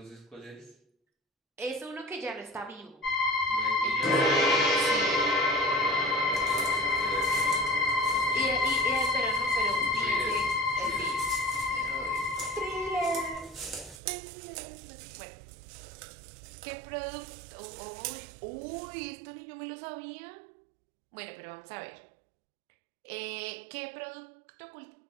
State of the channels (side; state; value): left; drops out; at 14.0 s